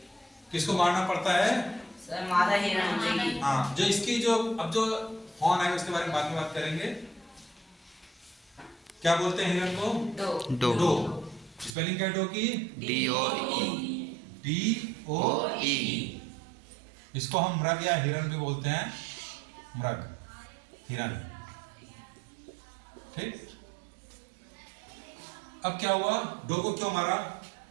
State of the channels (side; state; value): left; drops out; at 11.8 s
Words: किसको मारना पड़ता है? सर मादा हिरण। हाँ, जो इसकी जो अब जो फॉन है उसके बारे में बाद में बात करेंगे। क्या बोलते हैं हिरण को? डो। स्पेलिंग क्या है डो की? DOE। इसको हम मृग या हिरण भी बोलते हैं। मृग, हिरण। ठीक। अब क्या हुआ? डो को क्यों मारा?